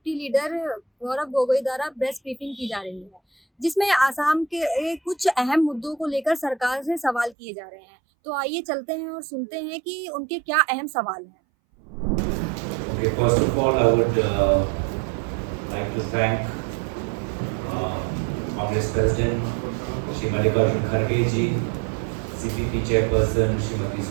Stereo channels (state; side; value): drops out; left; at 7.4 s